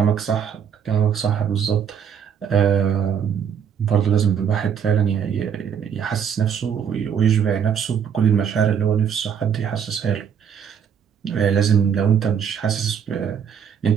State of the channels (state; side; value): quieter; left; 7.8 dB